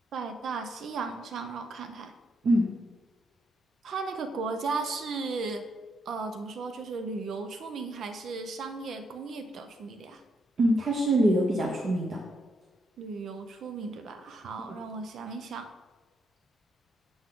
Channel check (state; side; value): normal; both; correlation 0.78